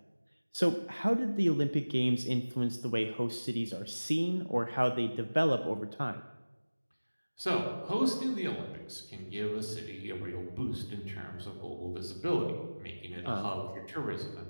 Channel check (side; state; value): both; inverted; correlation -1.00